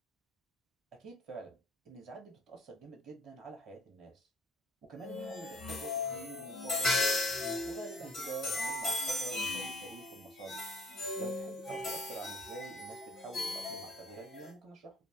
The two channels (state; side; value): normal; both; correlation 0.57